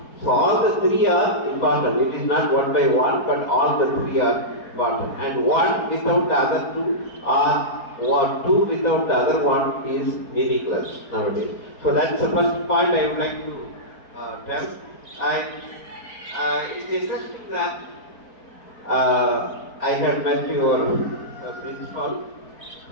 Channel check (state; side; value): late; right; 4.4 ms